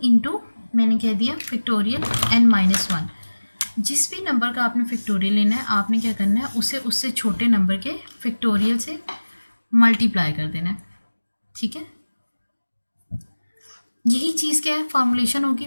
इंटू मैंने कह दिया फैक्टोरियल n-1। जिस भी नंबर का आपने फैक्टोरियल लेना है, आपने क्या करना है, उसे उससे छोटे नंबर के फैक्टोरियल से मल्टीप्लाई कर देना है, ठीक है। यही चीज़ क्या है, फॉर्मुलेशन होगी।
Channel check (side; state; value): both; inverted; correlation -1.00